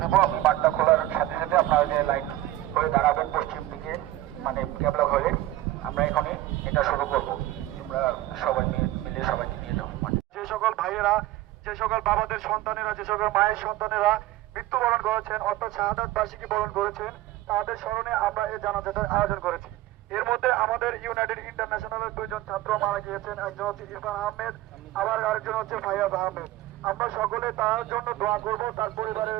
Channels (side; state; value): left; quieter; 16.0 dB